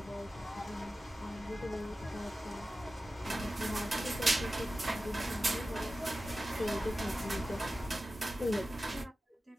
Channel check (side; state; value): both; normal; correlation 0.94